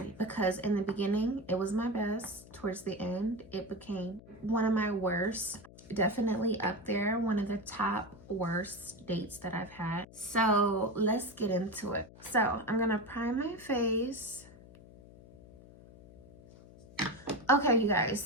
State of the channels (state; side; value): noise; left; hum, 20 dB below the sound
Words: because in the beginning it was my best. Towards the end it became one of my worst. Definitely up there, one of the top worst dates that I've had. So let's get into it. So I'm gonna prime my face. Okay, you guys,